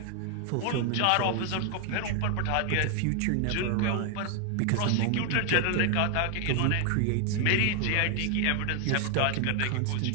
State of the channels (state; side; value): different; both; correlation 0.00